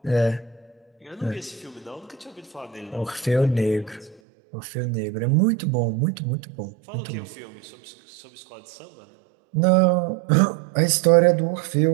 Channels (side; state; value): left; drops out; at 4.2 s